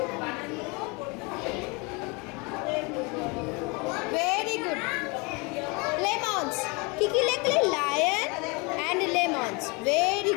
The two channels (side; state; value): right; quieter; 28.9 dB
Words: Very good. লেমনস। কি কি লিখলে? Lion and lemons. Very